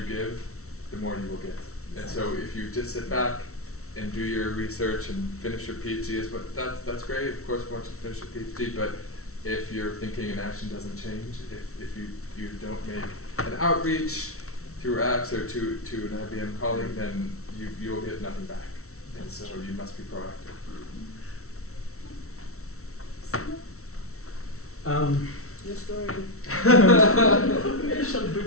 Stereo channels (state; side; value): late; right; 0.63 ms